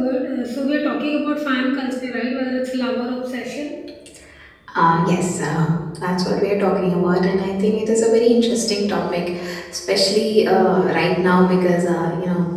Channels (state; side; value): identical; both; correlation 1.00